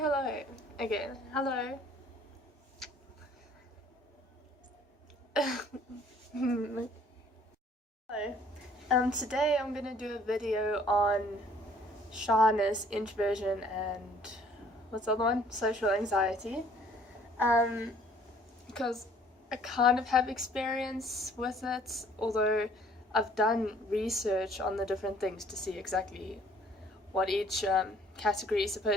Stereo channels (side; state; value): both; normal; correlation 0.58